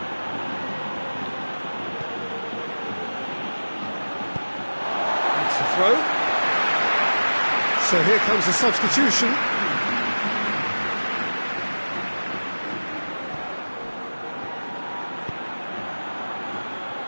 That's the throw. So here comes the substitution.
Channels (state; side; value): inverted; both; correlation -1.00